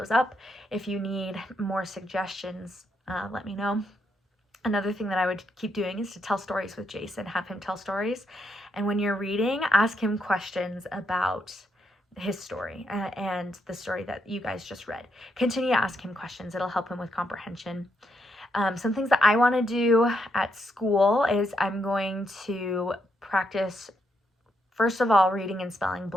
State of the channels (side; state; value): both; normal; correlation 0.78